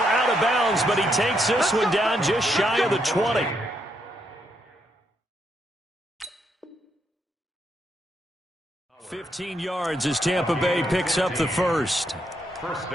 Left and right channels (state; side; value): normal; both; correlation 0.77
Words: of bounds, but he takes this one down just shy of the 20. $15 yards as Tampa Bay picks up the first. First